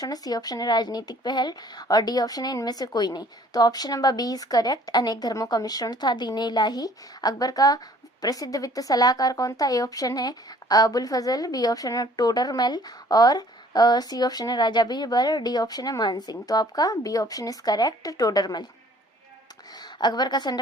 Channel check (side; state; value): both; normal; correlation 0.55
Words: है, सी ऑप्शन है राजनीतिक पहल और डी ऑप्शन है इनमें से कोई नहीं। तो option number B is correct, अनेक धर्मों का मिश्रण था दीन-ए इलाही। अकबर का प्रसिद्ध वित्त सलाहकार कौन था? ए ऑप्शन है अबुल फजल, बी ऑप्शन है टोडरमल और सी ऑप्शन है राजा बीरबल, डी ऑप्शन है मान सिंह। तो आपका B option is correct, Todarmal. Akbar का